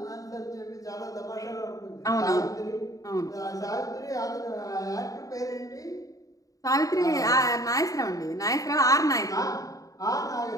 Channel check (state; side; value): late; right; 0.17 ms